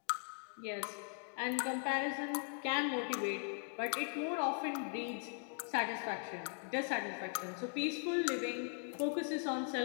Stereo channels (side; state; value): right; silent; 51 dB below the other